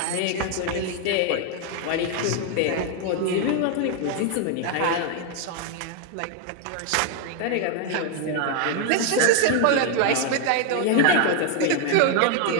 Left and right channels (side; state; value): both; different; correlation 0.00